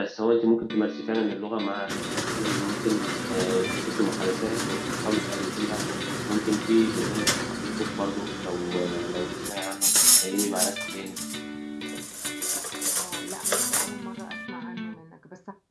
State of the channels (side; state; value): both; identical; correlation 1.00